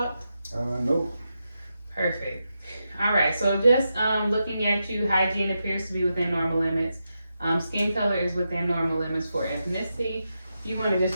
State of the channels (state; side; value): inverted; both; correlation -0.87